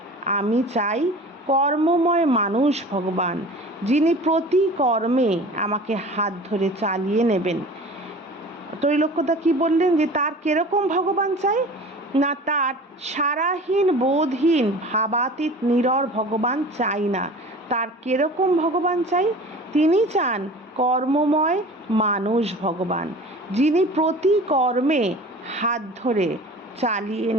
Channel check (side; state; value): both; normal; correlation 0.40